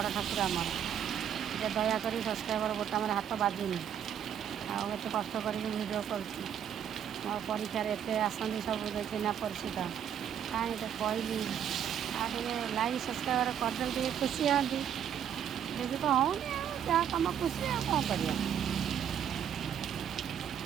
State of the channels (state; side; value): quieter; left; 9.1 dB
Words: ठाकुर आमर ये दयाक सब्सक्राइबर बोटाम हाथ बाजुनी आते कष्ट कर भिडियो कर परीक्षार एत आसती सब चिन्ह परिचित कहीं तो कहली आगे लाइक सब्सक्राइबर करदे खुशी हाँ देखिए तो हो जहाँ कम खुशी कौन कर